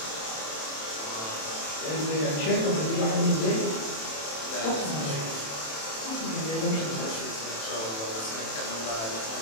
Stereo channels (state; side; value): late; right; 27 ms